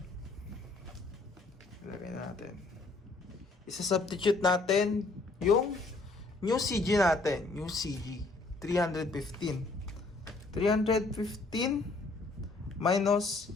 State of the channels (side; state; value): right; quieter; 3.4 dB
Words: Ilagay na natin. Isa-substitute natin yung new CG natin. New CG. 315. 315 minus